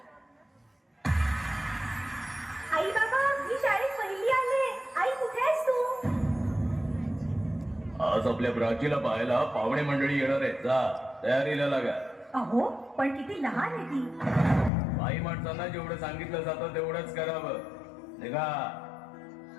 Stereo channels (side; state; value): right; drops out; at 14.7 s